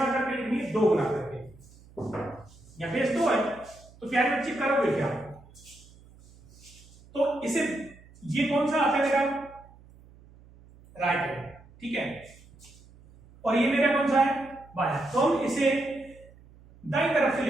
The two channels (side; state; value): right; noise; hum, 24 dB below the sound